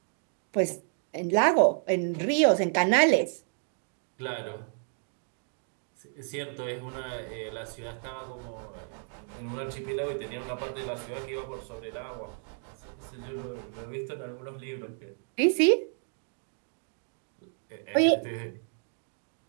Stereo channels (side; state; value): left; silent; 57 dB below the other